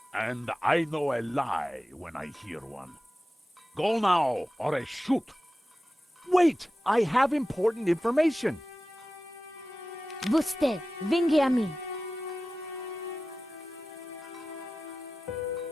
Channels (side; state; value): both; normal; correlation 0.94